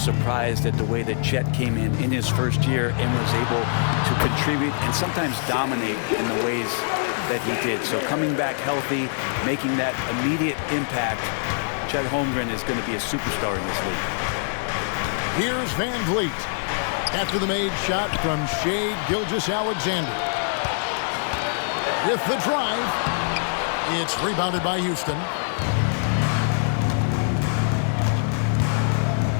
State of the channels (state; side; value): silent; right; 63 dB below the other